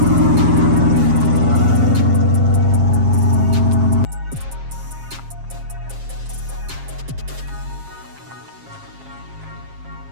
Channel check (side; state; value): left; late; 7.4 ms